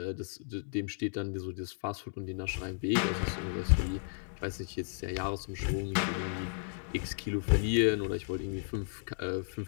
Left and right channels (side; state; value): right; silent; digital silence